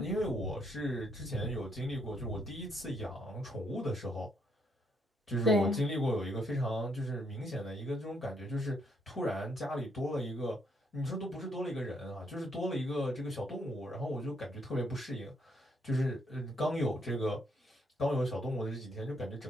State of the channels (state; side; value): normal; both; correlation 0.73